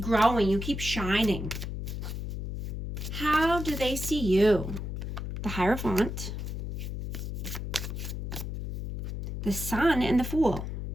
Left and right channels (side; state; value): left; noise; hum, 5 dB below the sound